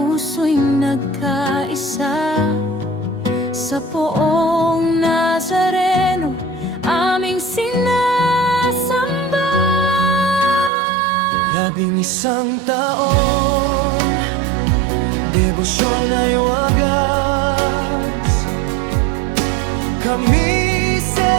nagkaisa. Sa Poong Nazareno, aming sinasamba. 11 taon, debosyon ay wagas. Kami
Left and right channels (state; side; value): drops out; left; at 10.7 s